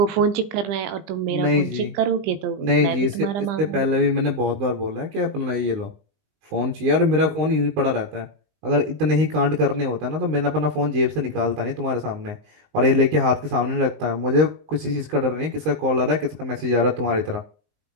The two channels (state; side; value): late; left; 20 ms